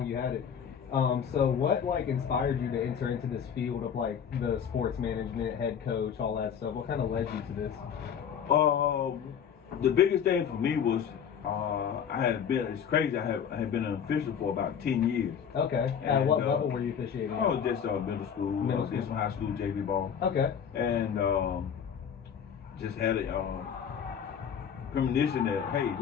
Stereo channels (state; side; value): quieter; right; 7.9 dB